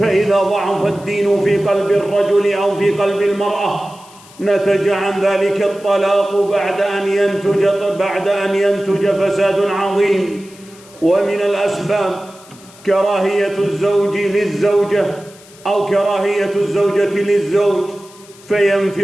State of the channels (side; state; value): left; noise; hiss, 23 dB below the sound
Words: ضعف الدين في قلب الرجل أو في قلب المرأة نتج عن ذلك الطلاق بعد أن ينتج فساد عظيم. ومن الأسباب كراهية الزوج للزوجة أو كراهية الزوجة للزوج،